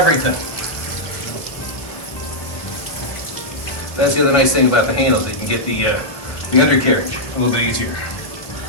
That's the other nice thing about the handles. You can get the undercarriage a little bit easier.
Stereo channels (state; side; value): late; right; 1.5 ms